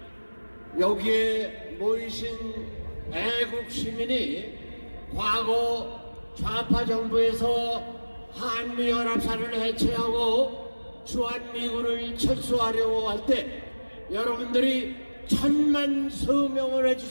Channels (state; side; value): inverted; both; correlation -1.00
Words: 여기에 모이신 애국 시민이 과거 좌파 정부에서 한미연합사를 해체하고 주한미군을 철수하려고 할 때 여러분들이 천만 서명을